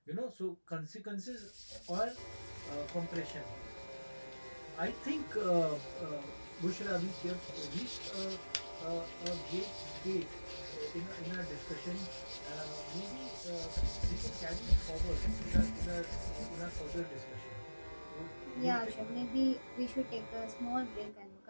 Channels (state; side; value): inverted; both; correlation -1.00